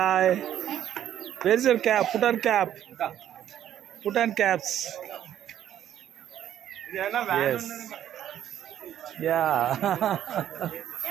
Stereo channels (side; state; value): left; quieter; 11.0 dB